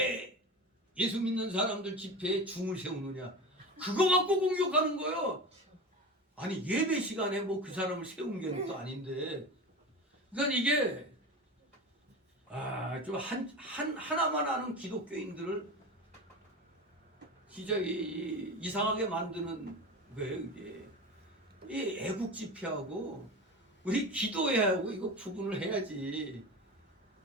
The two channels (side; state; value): both; normal; correlation 0.28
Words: 예수 믿는 사람들 집회에 중을 세우느냐? 그거 갖고 공격하는 거예요. 아니 예배 시간에 뭐 그 사람을 세운 게 또 아닌데. 그러니까 이게 좀 하나만 아는 기독교인들을 진짜 이상하게 만드는 거예요. 이게 이 애국 집회하고 우리 기도회하고 이거 구분을 해야지.